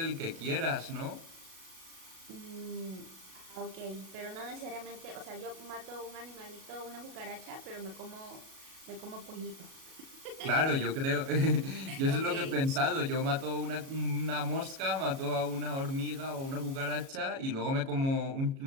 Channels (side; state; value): left; late; 37 ms